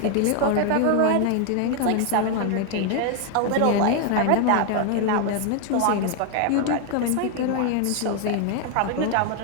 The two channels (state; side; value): different; both; correlation 0.00